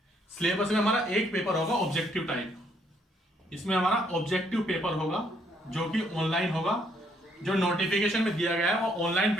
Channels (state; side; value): normal; both; correlation 0.70